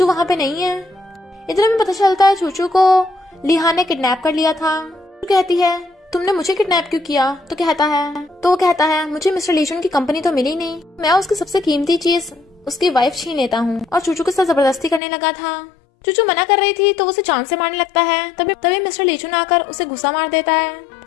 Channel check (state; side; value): drops out; right; at 15.0 s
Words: वहाँ पे नहीं है। इतने में पता चलता है चूचू को लिहान ने किडनैप कर लिया था। कहती है तुमने मुझे किडनैप क्यों किया? तो वो कहता है मुझे मिस्टर लीचुन की कंपनी तो मिली नहीं, मैं उसकी सबसे कीमती चीज उसकी वाइफ छीन लेता हूँ। और चूचू के साथ जबरदस्ती करने लगा था। चूचू मना कर रही थी तो वो उसे जान से मारने लगता है। तभी मिस्टर लीचुन आकर उसे गुस्सा मार देता है